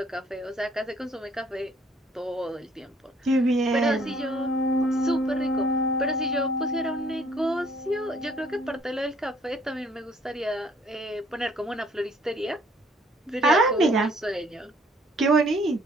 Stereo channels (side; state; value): both; normal; correlation 0.61